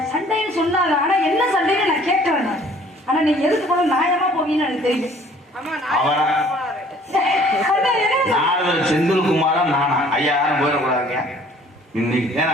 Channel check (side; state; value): both; normal; correlation 0.55